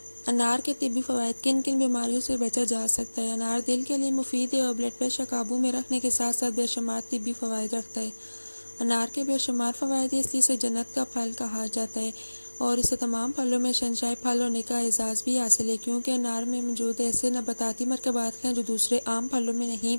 انار کے طبی فوائد: کن کن بیماریوں سے بچا جا سکتا ہے؟ انار دل کے لیے مفید ہے اور بلڈ پریشر قابو میں رکھنے کے ساتھ ساتھ بے شمار طبی فوائد رکھتا ہے۔ انار کے بے شمار فوائد ہیں، اس لیے اسے جنت کا پھل کہا جاتا ہے اور اسے تمام پھلوں میں شہنشاہ پھل ہونے کا اعزاز بھی حاصل ہے، کیونکہ انار میں موجود ایسے نباتاتی مرکبات ہیں جو دوسرے عام پھلوں میں نہیں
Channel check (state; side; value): inverted; both; correlation -1.00